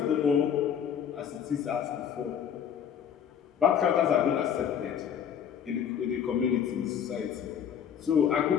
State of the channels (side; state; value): right; quieter; 8.4 dB